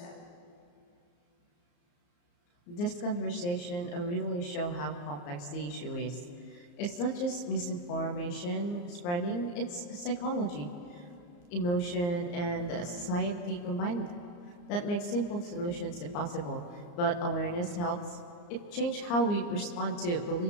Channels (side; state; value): right; late; 34 ms